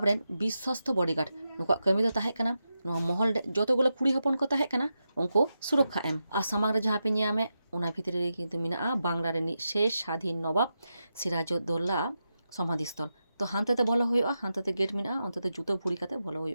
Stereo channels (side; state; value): both; inverted; correlation -0.89